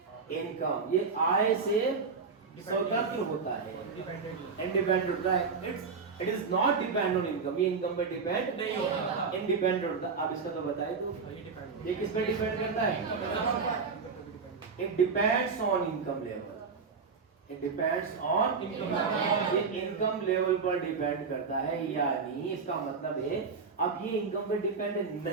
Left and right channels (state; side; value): quieter; left; 5.1 dB